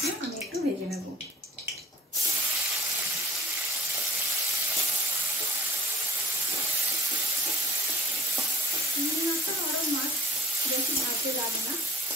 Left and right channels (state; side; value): normal; both; correlation 0.49